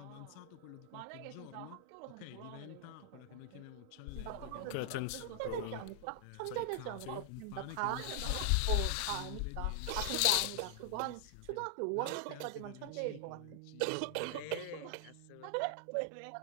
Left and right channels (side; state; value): both; different; correlation 0.00